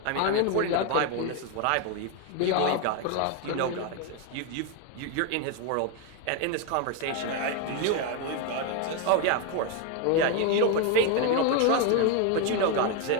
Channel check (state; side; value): different; both; correlation 0.01